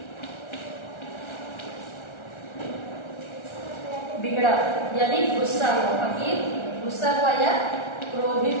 बिगड़ा, यानी गुस्सा हुआ, फकीर गुस्सा हुआ या क्रोधित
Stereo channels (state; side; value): late; right; 1.4 ms